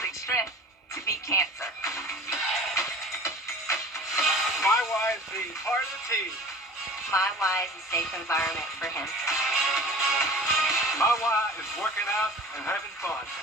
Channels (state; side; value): normal; both; correlation 0.42